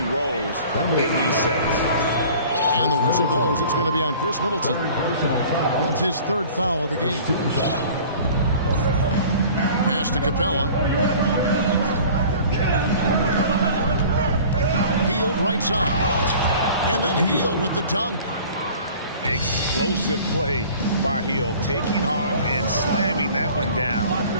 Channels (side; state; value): both; inverted; correlation -0.46